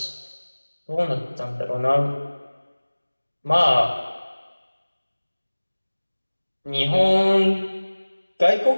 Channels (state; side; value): inverted; both; correlation -1.00